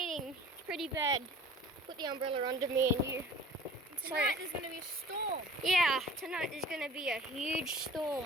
It's pretty bad. Put the umbrella under me and you. Tonight there's going to be a storm. Yeah, tonight there's going to be a huge storm.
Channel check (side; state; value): both; normal; correlation 0.45